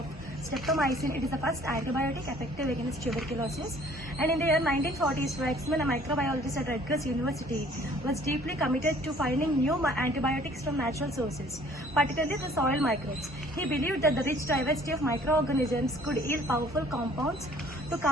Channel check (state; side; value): normal; both; correlation 0.55